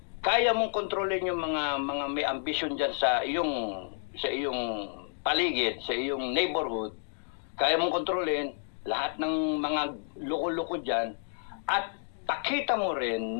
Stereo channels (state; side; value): silent; right; digital silence